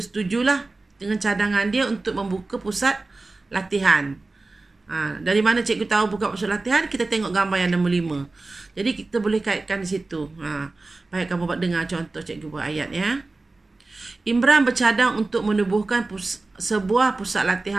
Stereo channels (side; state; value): left; quieter; 3.4 dB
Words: dengan cadangan dia untuk membuka pusat latihan. Dari mana cikgu tahu buka pusat latihan? Kita tengok gambar yang nombor 5. Jadi kita boleh kaitkan di situ. Baik, kamu buat dengar contoh cikgu buat ayat ya. Imran bercadang untuk menubuhkan sebuah pusat